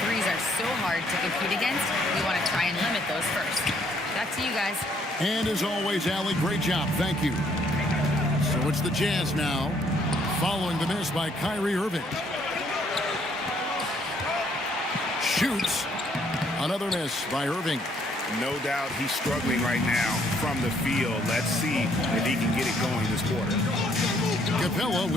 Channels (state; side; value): normal; both; correlation 0.67